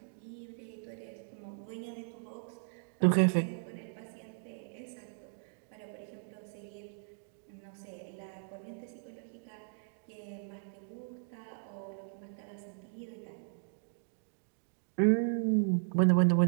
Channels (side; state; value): left; silent; digital silence